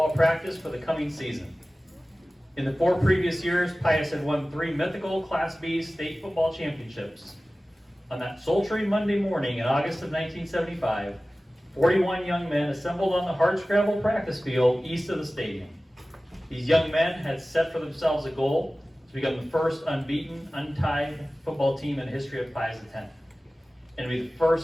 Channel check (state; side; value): normal; both; correlation 0.97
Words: practice for the coming season. In the 4 previous years, Pius had won 3 mythical Class B state football championships. On that sultry Monday morning in August of 1975, 41 young men assembled on the hardscrabble practice field east of the stadium. These young men had set for themselves a goal to become the first unbeaten, untied football team in the history of Pius X, and to be the